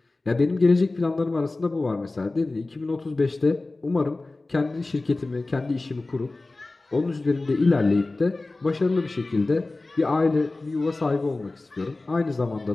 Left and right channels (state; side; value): quieter; right; 3.2 dB